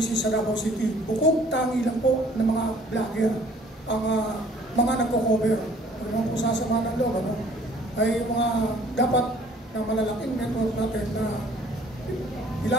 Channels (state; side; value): normal; both; correlation 0.56